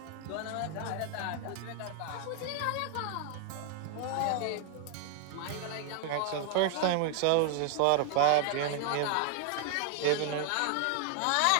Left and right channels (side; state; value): both; different; correlation 0.00